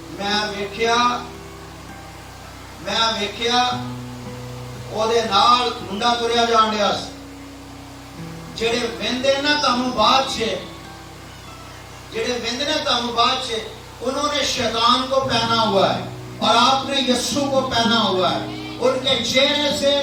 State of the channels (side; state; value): both; identical; correlation 1.00